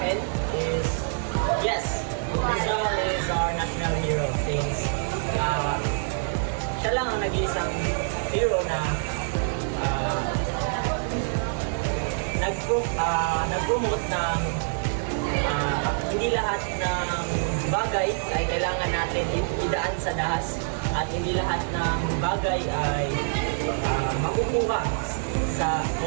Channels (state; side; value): silent; left; digital silence